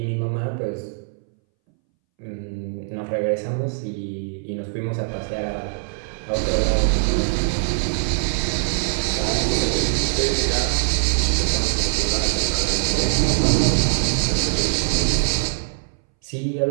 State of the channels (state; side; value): silent; left; 63 dB below the other